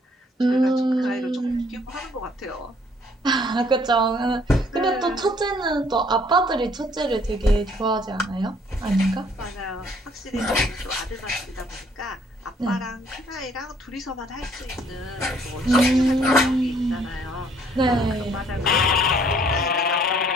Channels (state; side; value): normal; both; correlation 0.62